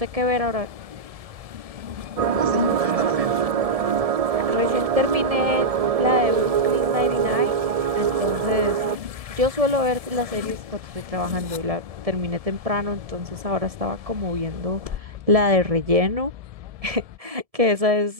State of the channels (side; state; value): left; late; 1.7 ms